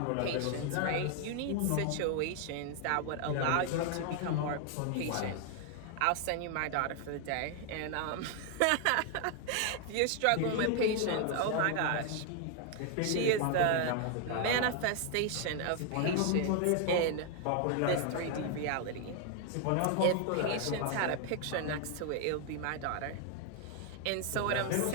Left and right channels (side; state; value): both; different; correlation 0.00